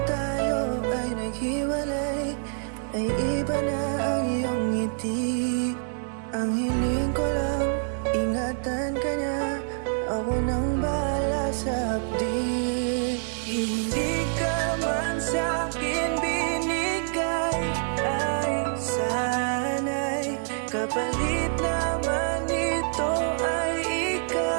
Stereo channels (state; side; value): silent; left; 61 dB below the other